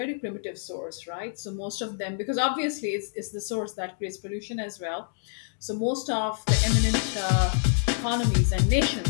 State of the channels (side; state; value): right; silent; digital silence